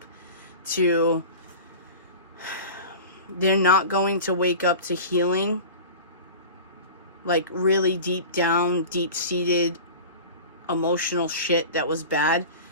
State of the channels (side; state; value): both; inverted; correlation -0.36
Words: to... They're not going to wake up to healing, like really deep down, deep-seated emotional shit that was bad,